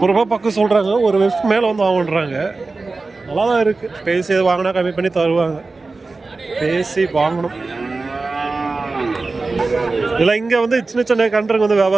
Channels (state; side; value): quieter; left; 3.7 dB